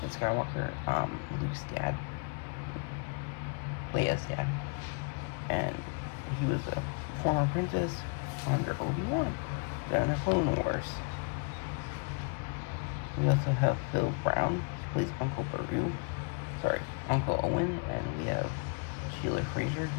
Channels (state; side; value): quieter; right; 32.8 dB